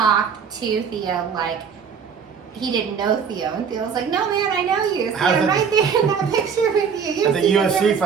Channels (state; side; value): quieter; left; 6.7 dB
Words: to Theo like he didn't know Theo, and Theo was like, "No, man, I know you. See, I'm right there in that picture with you. At the UFC